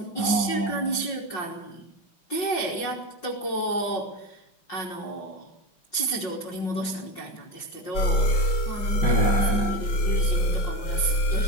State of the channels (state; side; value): late; right; 5.5 ms